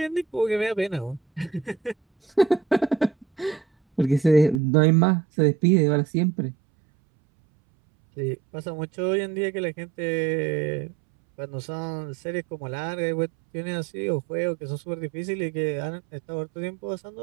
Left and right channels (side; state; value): left; drops out; at 4.6 s